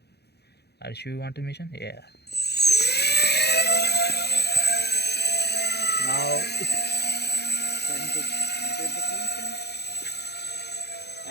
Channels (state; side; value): late; right; 0.48 ms